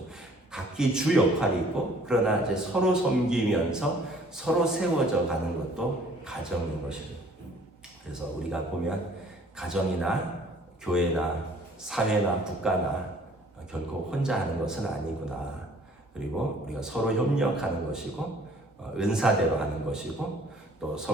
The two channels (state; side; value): normal; both; correlation 0.56